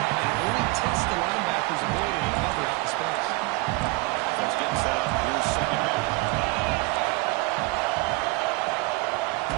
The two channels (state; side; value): quieter; left; 24.4 dB